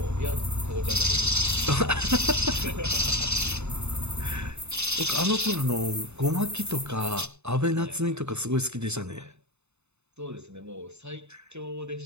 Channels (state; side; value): late; left; 0.81 ms